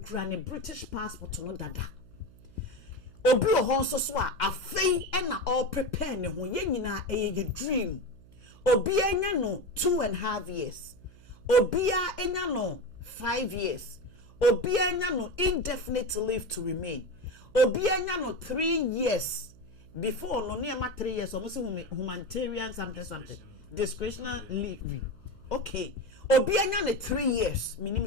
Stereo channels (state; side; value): noise; right; hum, 23 dB below the sound